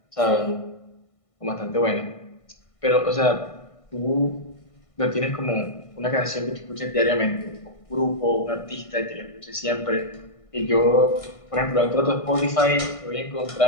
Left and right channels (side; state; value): right; late; 1.5 ms